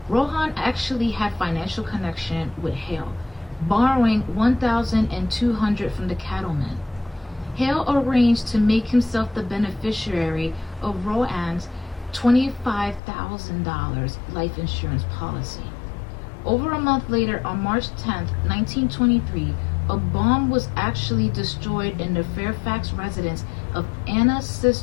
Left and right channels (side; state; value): right; drops out; at 13.0 s